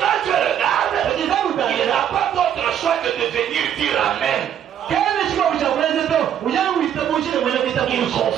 tu regardes, il n'a pas d'autre choix que de venir dire Amen. Il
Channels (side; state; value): left; quieter; 9.7 dB